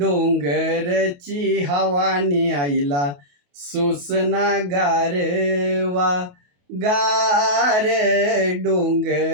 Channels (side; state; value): left; late; 28 ms